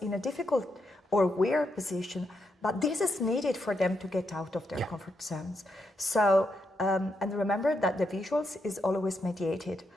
in a difficult or weird position, but this is needed for them to get out of their comfort zones. So, and remember that the visuals is always mediated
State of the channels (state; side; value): normal; both; correlation 0.81